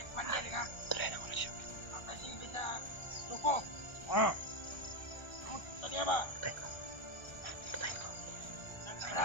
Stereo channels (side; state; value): right; late; 1.3 ms